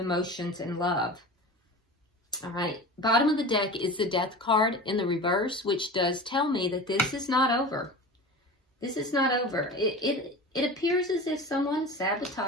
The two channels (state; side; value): normal; both; correlation 0.33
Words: and love. All right. Bottom of the deck is the Death card in the reverse, which does tell me that this is not over. This is not over. It appears as if someone